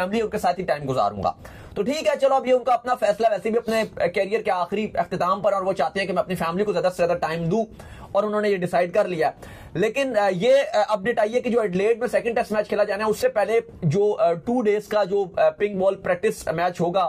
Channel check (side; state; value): both; identical; correlation 1.00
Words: उनके साथ ही टाइम गुजारूंगा। तो ठीक है, चलो अब ये उनका अपना फैसला, वैसे भी अपने कैरियर के आखिरी अख्तिताम पर, और वो चाहते हैं कि मैं अपनी फैमिली को ज्यादा से ज्यादा टाइम दूं, और उन्होंने ये डिसाइड कर लिया। लेकिन ये अपडेट आई है कि जो एडिलेड में सेकंड टेस्ट मैच खेला जाना है, उससे पहले जो 2 डेज का जो पिंक बॉल प्रैक्टिस मैच होगा